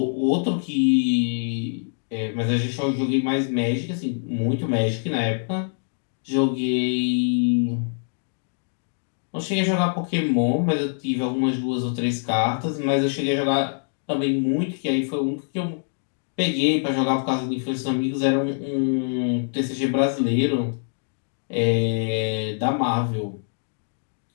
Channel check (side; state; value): right; silent; digital silence